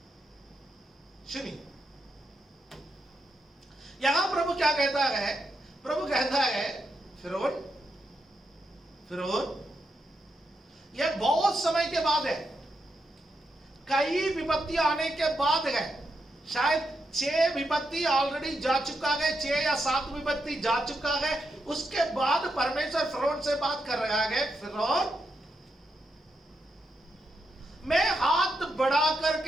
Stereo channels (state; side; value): normal; both; correlation 0.83